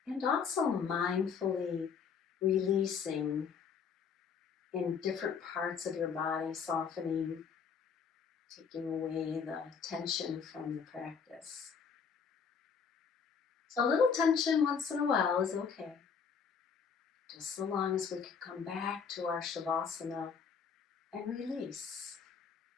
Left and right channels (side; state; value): right; quieter; 6.3 dB